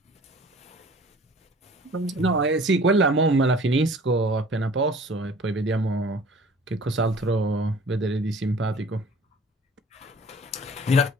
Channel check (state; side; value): normal; both; correlation 0.48